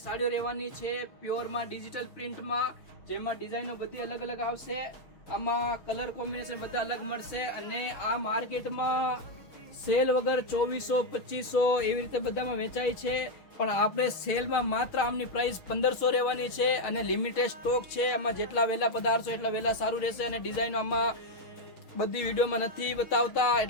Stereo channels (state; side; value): late; right; 6.4 ms